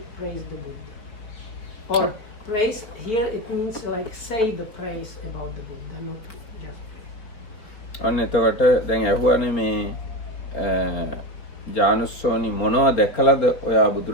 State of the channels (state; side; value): late; right; 4.5 ms